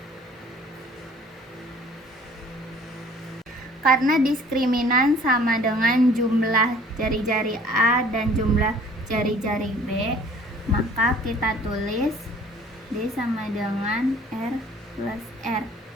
Karena diskriminan sama dengan jumlah jari-jari A dan jumlah jari-jari B, maka kita tulis D sama dengan R plus R.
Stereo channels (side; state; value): both; normal; correlation 0.53